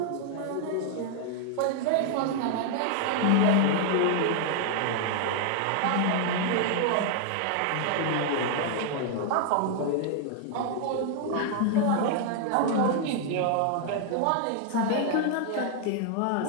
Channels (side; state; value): both; different; correlation 0.00